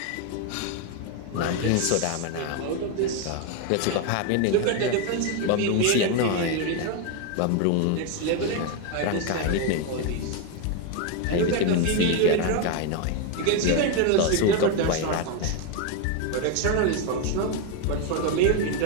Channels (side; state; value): both; different; correlation 0.02